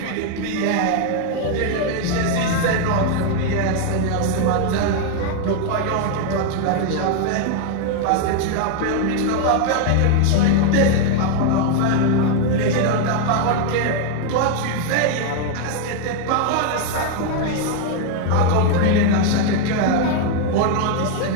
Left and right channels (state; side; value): different; both; correlation 0.01